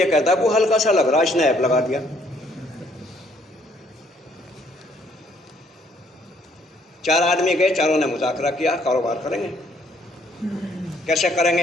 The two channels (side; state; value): both; normal; correlation 0.66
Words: کہتا ہے وہ ہلکا سا لگ رہا، اس نے ایپ لگا دیا۔ 4 آدمی گئے، چاروں نے مذاکرہ کیا کاروبار کریں گے، کیسے کریں